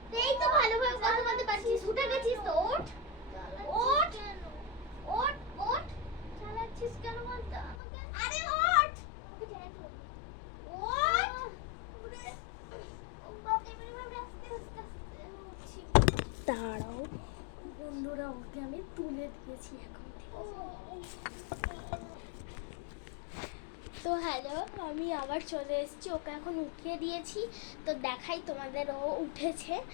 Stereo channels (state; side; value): drops out; right; at 7.8 s